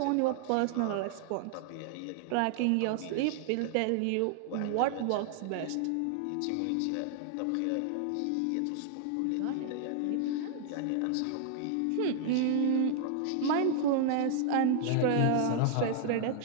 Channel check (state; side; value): different; both; correlation 0.00